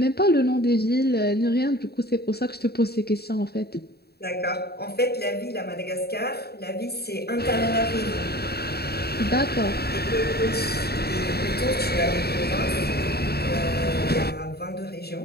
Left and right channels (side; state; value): right; late; 0.46 ms